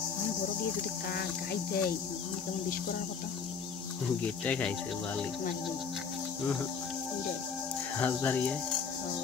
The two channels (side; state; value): right; quieter; 6.0 dB